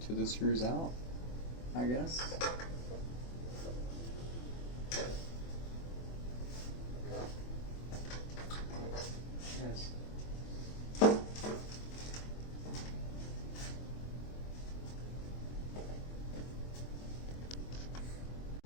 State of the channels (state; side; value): late; right; 24 ms